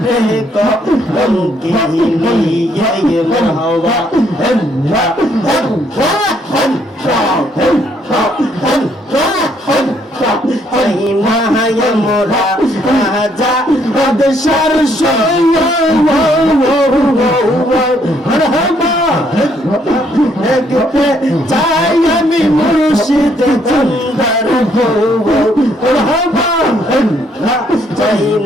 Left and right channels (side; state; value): both; normal; correlation 0.69